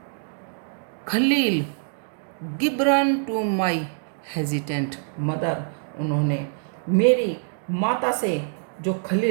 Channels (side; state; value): left; silent; digital silence